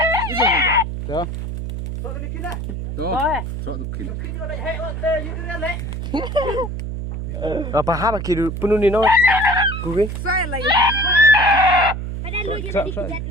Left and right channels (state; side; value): noise; right; hum, 5 dB below the sound